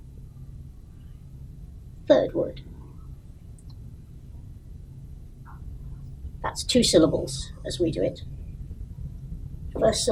Third word. That's 2 syllables as we do it. First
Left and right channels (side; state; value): both; identical; correlation 1.00